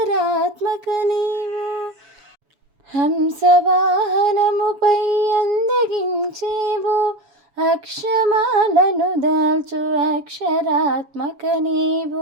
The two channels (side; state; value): left; late; 7.2 ms